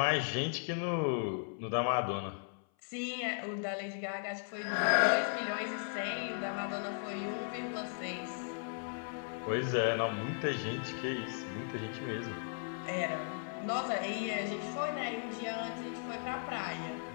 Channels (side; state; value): right; silent; 53 dB below the other